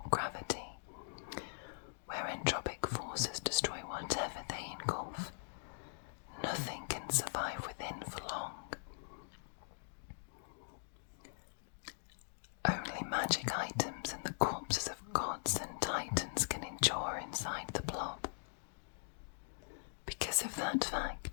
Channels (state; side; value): silent; right; digital silence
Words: gravity, where entropic forces destroy whatever they engulf. Nothing can survive within for long. Only magic items and the corpses of gods and titans can endure inside the Blob. Because of that